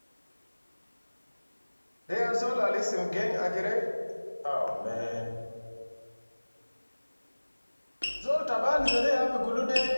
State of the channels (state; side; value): inverted; both; correlation -1.00